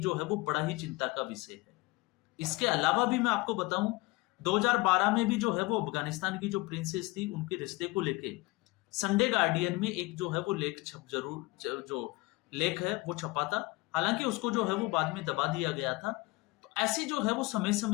जो है वो बड़ा ही चिंता का विषय है। इसके अलावा भी मैं आपको बताऊं, 2012 में भी जो है वो अफगानिस्तान की जो प्रिंसेस थी उनके रिश्ते को लेके संडे गार्डियन में एक जो है वो लेख जो लेख है वो छपा था। हालांकि उसको जो है वो बाद में दबा दिया गया था। तो ऐसी जो है वो समय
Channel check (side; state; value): right; quieter; 23.0 dB